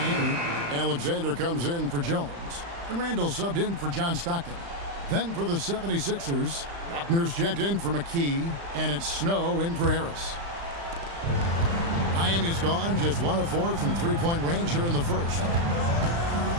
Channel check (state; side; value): late; left; 35 ms